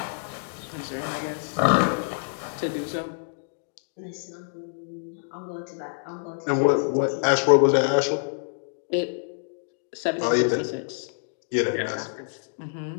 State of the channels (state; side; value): silent; right; digital silence